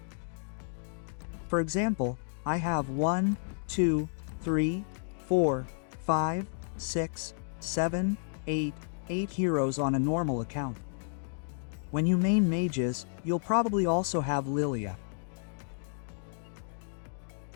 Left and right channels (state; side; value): silent; right; digital silence